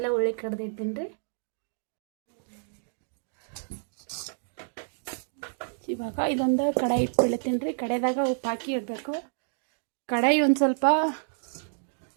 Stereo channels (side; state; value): left; silent; digital silence